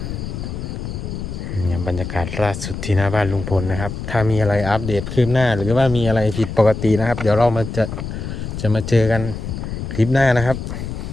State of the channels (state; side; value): noise; left; rumble, 6 dB below the sound